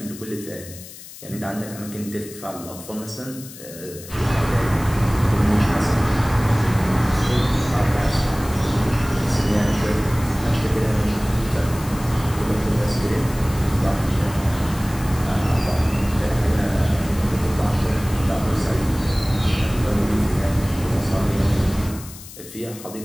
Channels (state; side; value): noise; left; hiss, 16 dB below the sound